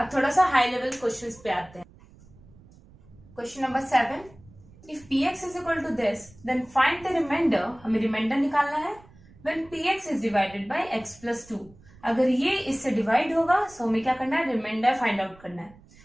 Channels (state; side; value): noise; right; rumble, 25 dB below the sound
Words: थोड़ा सा हाई लेवल क्वेश्चंस पे आते हैं। Question number 7, if px is equal to this then find the remainder। हमें रिमाइंडर निकालना है when px is divided by x plus 2। अगर ये इससे डिवाइड होगा तो हमें क्या करना है, रिमाइंडर फाइंड आउट करना है।